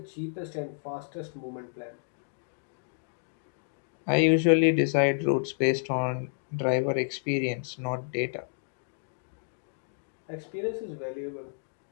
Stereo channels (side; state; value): right; silent; digital silence